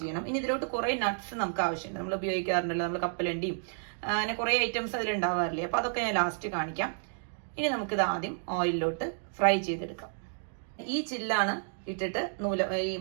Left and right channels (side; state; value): left; silent; digital silence